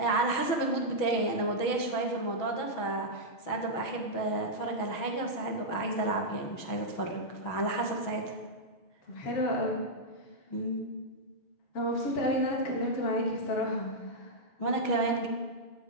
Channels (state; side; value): late; right; 6.2 ms